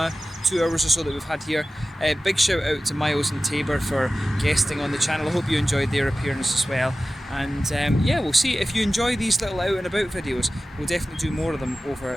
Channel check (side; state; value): both; normal; correlation 0.95